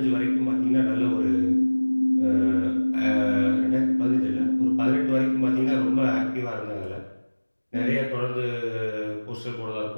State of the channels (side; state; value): both; inverted; correlation -1.00